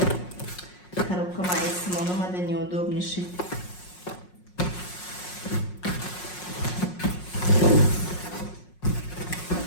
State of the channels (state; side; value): late; right; 5.5 ms